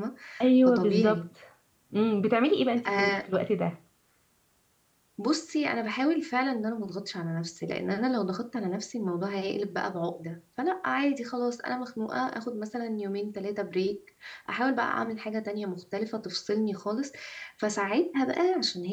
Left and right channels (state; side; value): identical; both; correlation 1.00